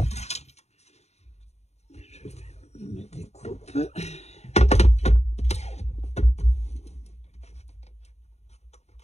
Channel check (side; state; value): right; late; 0.32 ms